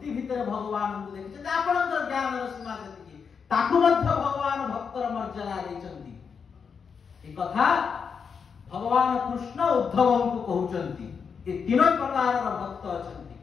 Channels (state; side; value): quieter; right; 6.2 dB